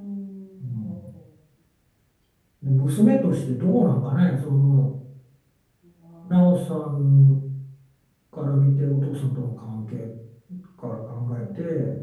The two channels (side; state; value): both; identical; correlation 1.00